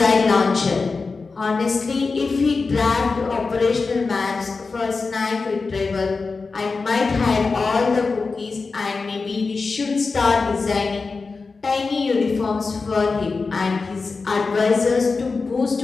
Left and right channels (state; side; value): quieter; right; 4.3 dB